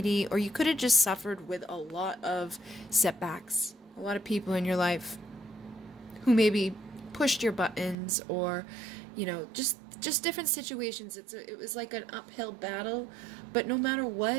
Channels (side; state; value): left; drops out; at 8.0 s